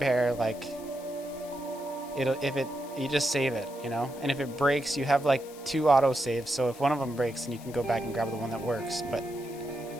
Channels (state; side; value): noise; left; hiss, 19 dB below the sound